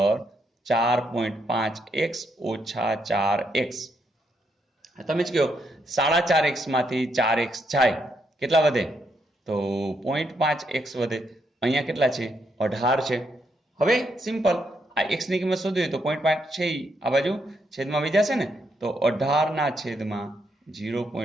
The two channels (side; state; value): both; normal; correlation 0.78